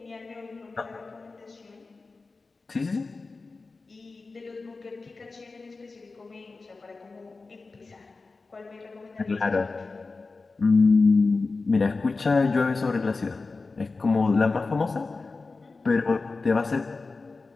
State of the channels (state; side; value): quieter; right; 3.9 dB